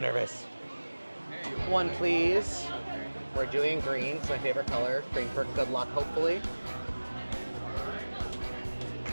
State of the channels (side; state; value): both; inverted; correlation -1.00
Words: One, please. We're doing green, it's my favorite color. Green for good luck, hopefully.